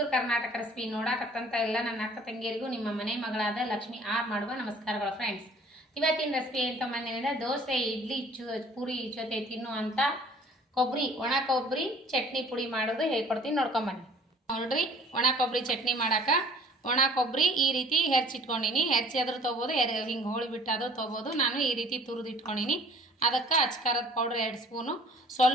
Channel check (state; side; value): normal; both; correlation 0.52